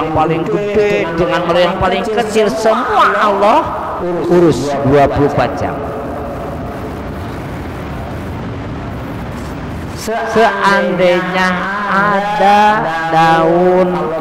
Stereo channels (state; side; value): identical; both; correlation 1.00